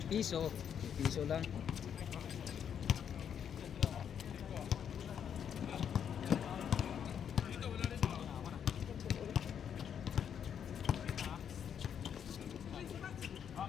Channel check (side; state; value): right; quieter; 8.3 dB